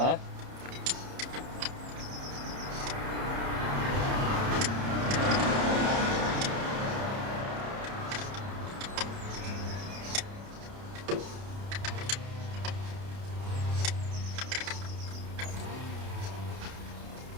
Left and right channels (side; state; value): left; late; 30 ms